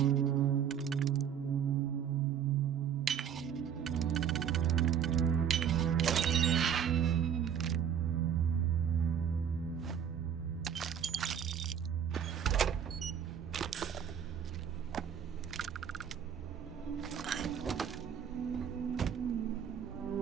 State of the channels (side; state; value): left; quieter; 8.4 dB